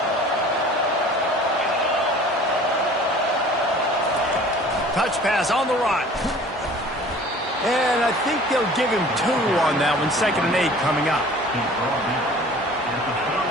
Touch pass on the run. And I think they'll give him 2 on that one. 2nd and 8 coming up.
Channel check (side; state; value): both; normal; correlation 0.47